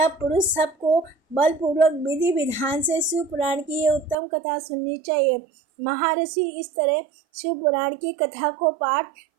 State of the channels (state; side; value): drops out; left; at 4.2 s